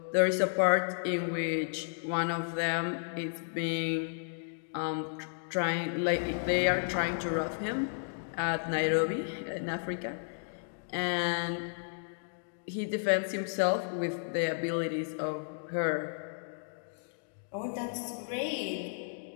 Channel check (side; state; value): right; silent; digital silence